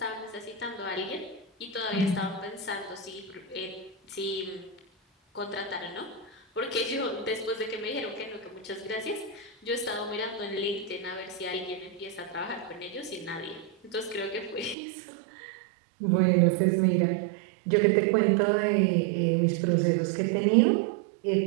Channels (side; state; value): left; drops out; at 14.8 s